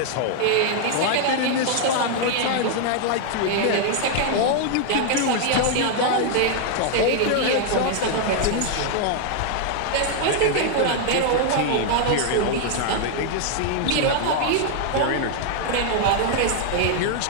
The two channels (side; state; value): both; different; correlation 0.00